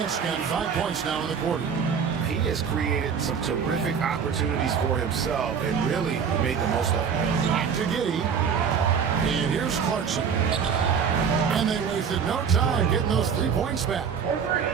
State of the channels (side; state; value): left; quieter; 6.7 dB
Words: got 5 points now in the quarter. He has created some terrific opportunities for himself and really made the most of it. Back to Giddey. And here's Clarkson. And they wasted no time getting those 3 points back.